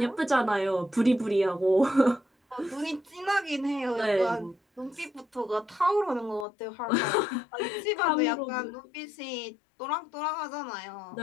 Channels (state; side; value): drops out; right; at 6.5 s